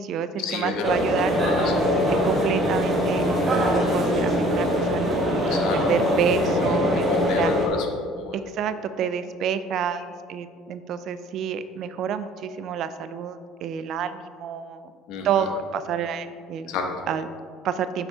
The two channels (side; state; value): both; normal; correlation 0.53